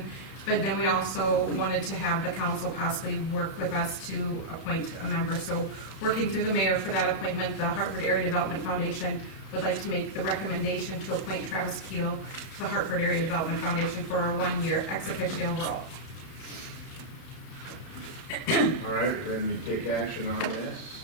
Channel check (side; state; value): right; late; 32 ms